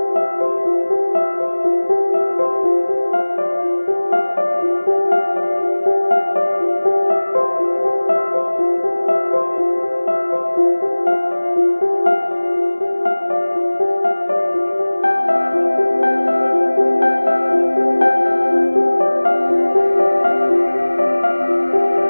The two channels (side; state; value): both; inverted; correlation -1.00